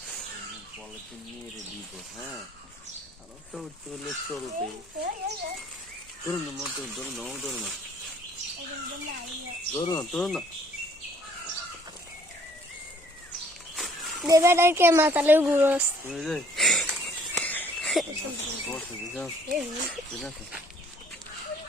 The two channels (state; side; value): noise; left; rumble, 29 dB below the sound